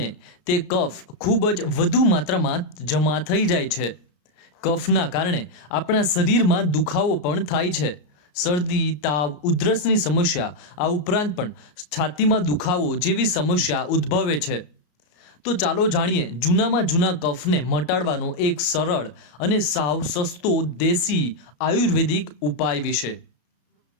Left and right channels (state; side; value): late; right; 33 ms